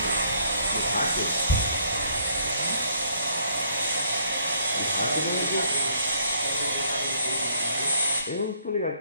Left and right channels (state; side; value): inverted; both; correlation -0.65